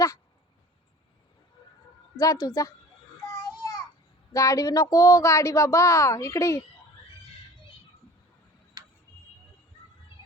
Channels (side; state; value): both; normal; correlation 0.44